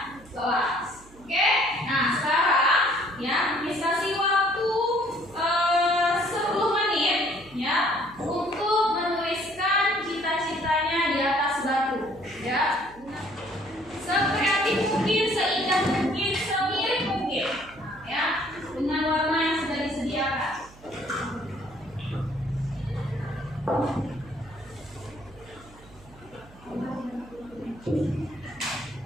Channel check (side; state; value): right; noise; hum, 23 dB below the sound